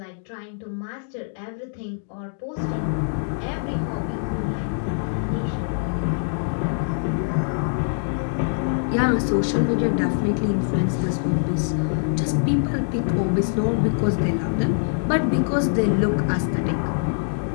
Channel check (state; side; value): silent; right; digital silence